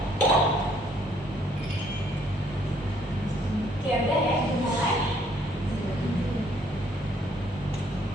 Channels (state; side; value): normal; both; correlation 0.65